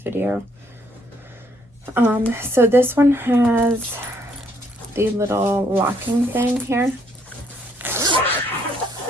So this one has the little locking thing here.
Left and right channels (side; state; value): both; normal; correlation 0.68